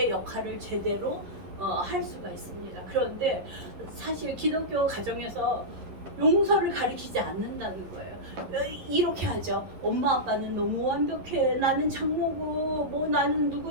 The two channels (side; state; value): left; late; 11 ms